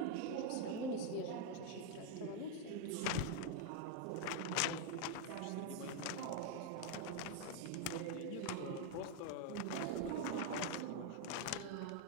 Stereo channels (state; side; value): different; both; correlation 0.01